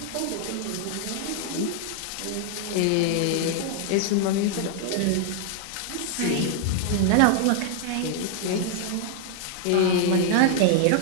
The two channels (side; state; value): both; different; correlation -0.01